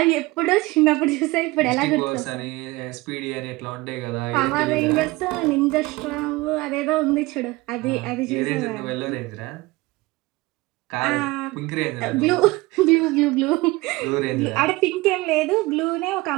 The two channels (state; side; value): quieter; left; 21.6 dB